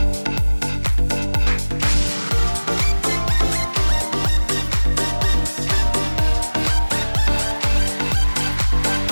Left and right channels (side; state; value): both; inverted; correlation -1.00